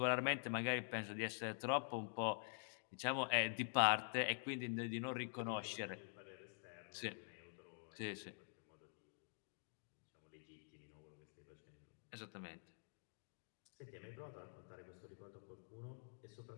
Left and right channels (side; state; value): right; silent; digital silence